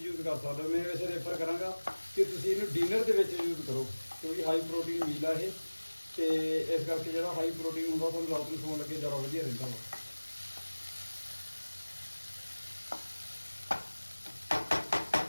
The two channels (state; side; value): inverted; both; correlation -1.00